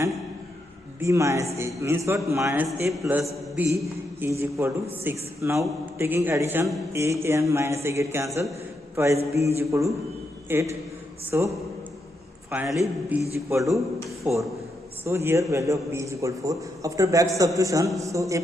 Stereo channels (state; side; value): normal; both; correlation 0.82